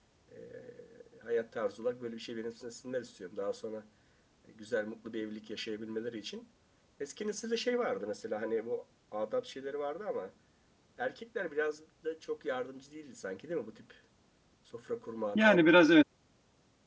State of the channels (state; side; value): identical; both; correlation 1.00